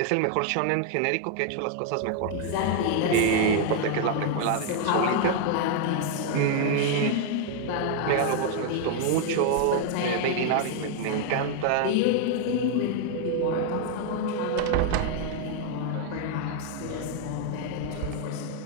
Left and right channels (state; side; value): different; both; correlation 0.00